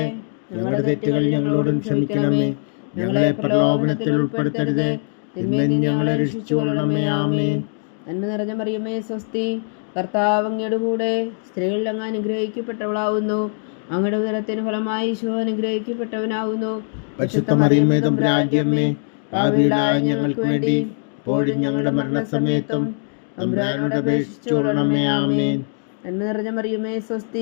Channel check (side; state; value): right; silent; 57 dB below the other